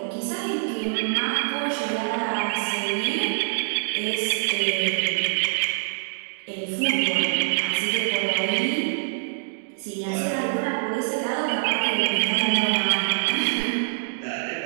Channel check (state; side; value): silent; left; digital silence